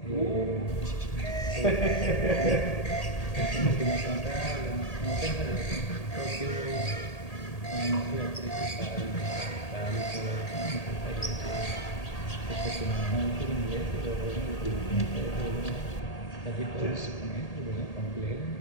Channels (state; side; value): late; right; 1.8 ms